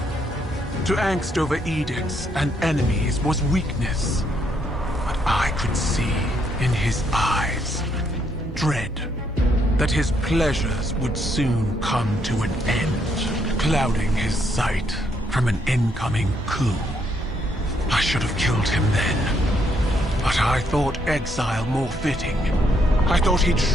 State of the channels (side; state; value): both; normal; correlation 0.73